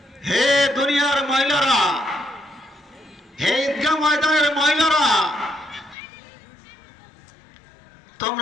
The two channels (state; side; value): drops out; right; at 6.0 s